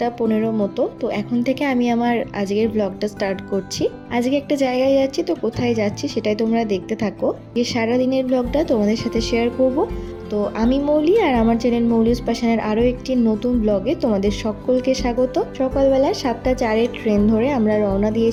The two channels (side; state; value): both; identical; correlation 1.00